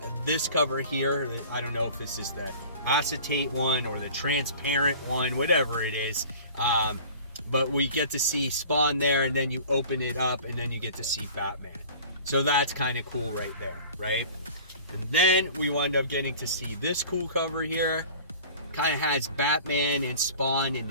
this cover here. I don't know if this is the acetate one or the transparent one, whatever it is. But we get to see Spawn there, and then you open it up, and then you get to see Batman. So that's kind of cool right there, right? And then we wind up getting to see this cool cover here. Kind of has Batman and Spawn in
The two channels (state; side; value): inverted; both; correlation -0.44